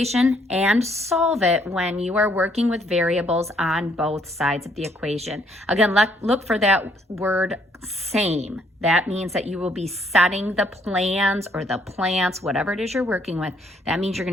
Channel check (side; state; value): both; normal; correlation 0.67